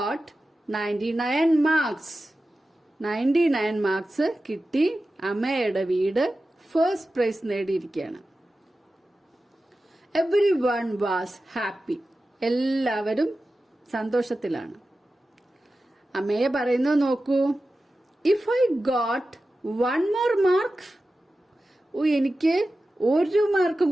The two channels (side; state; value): both; normal; correlation 0.93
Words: 99 marks. 99 marks കിട്ടി. അമേയുടെ വീട് ഫസ്റ്റ് പ്രൈസ് നേടിയിരിക്കുകയാണ്. Everyone was happy. എല്ലാവരും സന്തോഷത്തിലാണ്. അമേയ പറയുന്നത് നോക്കൂ. If I got 1 more mark, എനിക്ക് 1 മാർക്ക്